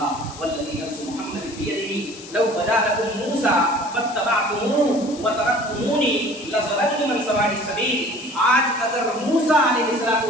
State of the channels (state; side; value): noise; left; hiss, 16 dB below the sound